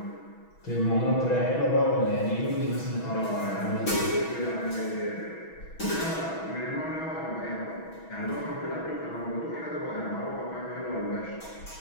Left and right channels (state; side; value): late; right; 6.2 ms